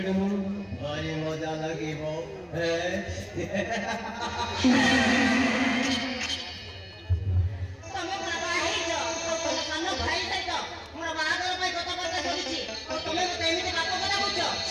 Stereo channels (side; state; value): both; identical; correlation 1.00